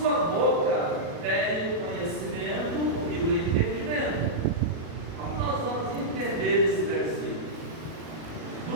boca vem o conhecimento e o entendimento. Como nós vamos entender esse versículo?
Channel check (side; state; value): left; late; 37 ms